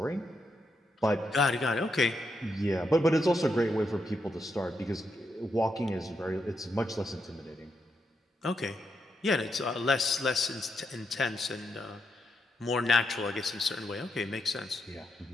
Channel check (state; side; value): normal; both; correlation 0.82